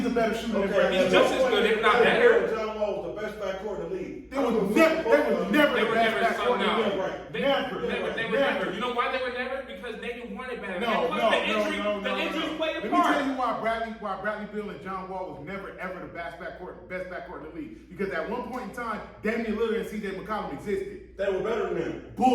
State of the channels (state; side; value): identical; both; correlation 1.00